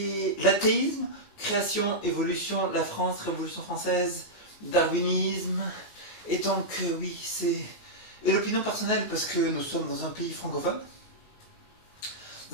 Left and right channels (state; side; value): late; right; 19 ms